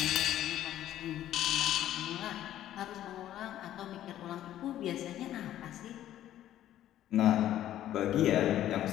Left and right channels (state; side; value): quieter; right; 12.4 dB